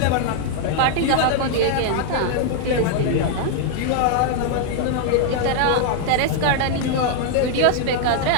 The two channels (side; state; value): both; different; correlation 0.00